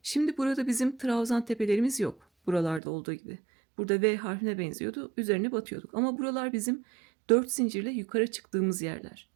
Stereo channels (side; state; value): left; drops out; at 2.8 s